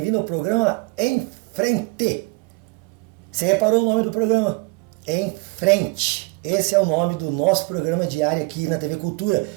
ao programa Em Frente. Você reparou o nome do programa? Em Frente. Esse é o nome do nosso programa diário aqui na TV Cultura,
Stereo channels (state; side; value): quieter; left; 27.2 dB